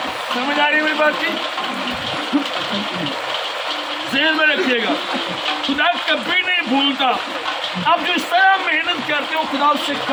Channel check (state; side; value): identical; both; correlation 1.00